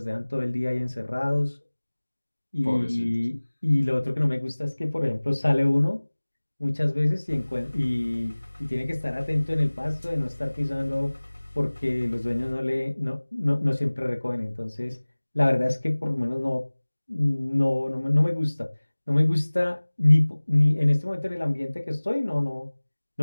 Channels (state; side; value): inverted; both; correlation -1.00